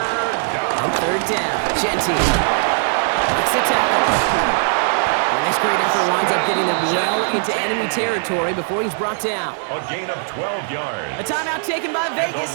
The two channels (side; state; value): left; silent; digital silence